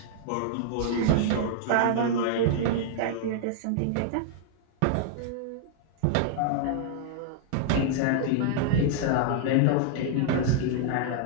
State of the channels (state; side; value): different; both; correlation -0.01